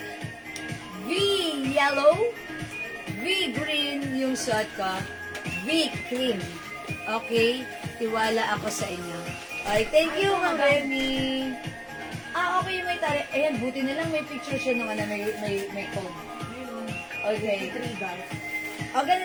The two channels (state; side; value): identical; both; correlation 1.00